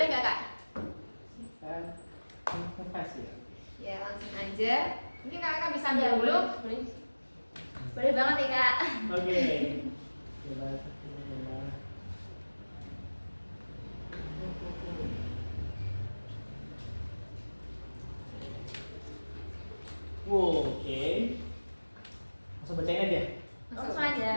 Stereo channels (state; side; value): inverted; both; correlation -1.00